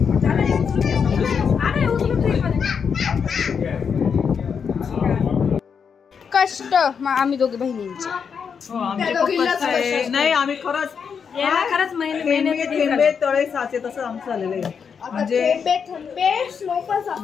कष्ट आम्ही दोघी बहिणींचे. नाही आम्ही खरंच महिने तळे साचे तसं आमचं झालेलं आहे. म्हणजे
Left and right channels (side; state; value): right; quieter; 6.6 dB